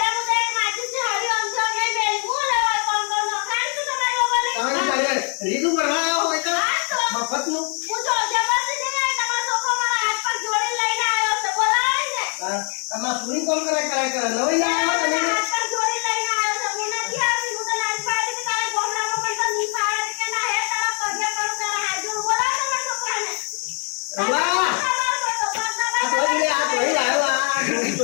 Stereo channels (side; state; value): right; quieter; 39.6 dB